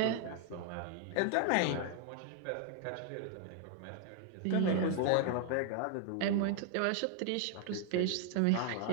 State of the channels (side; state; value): both; different; correlation 0.00